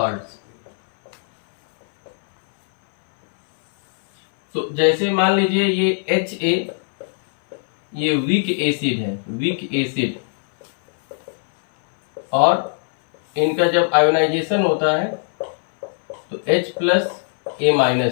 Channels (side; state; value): right; silent; 61 dB below the other